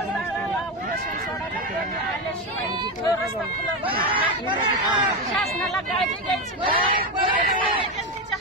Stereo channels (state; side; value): normal; both; correlation 0.13